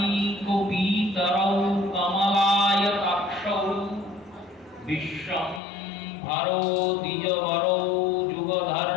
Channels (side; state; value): right; drops out; at 5.6 s